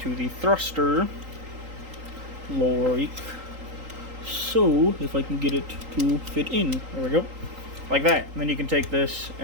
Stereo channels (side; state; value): left; late; 3.8 ms